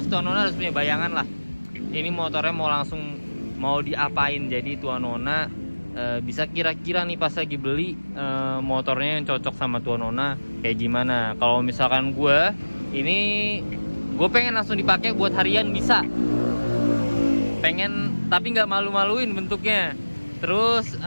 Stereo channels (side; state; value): both; inverted; correlation -1.00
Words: tuan nona harus punya bayangan lah ini motornya mau diapain. Jadi tuan nona bisa kira-kira nih pas lagi beli motornya yang cocok sama tuan nona kayak gimana. Kalau misalkan gue pengen langsung dipakai buat harian bisa, pengen tapi nggak malu-maluin bentuknya. Terus